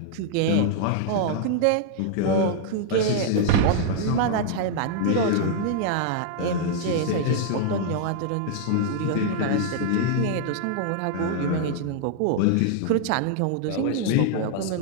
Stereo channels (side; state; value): both; different; correlation -0.01